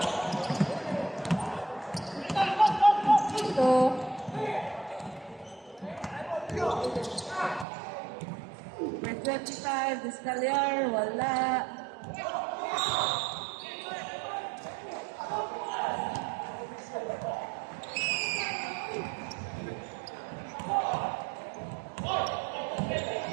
So, with 25, this Talyar, wala.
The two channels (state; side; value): drops out; left; at 7.7 s